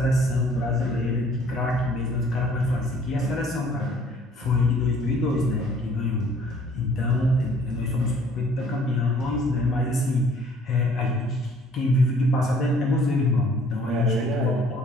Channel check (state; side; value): normal; both; correlation 0.57